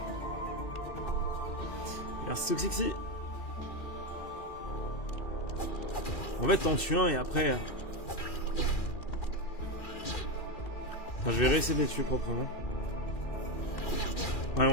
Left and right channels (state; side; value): late; right; 2.6 ms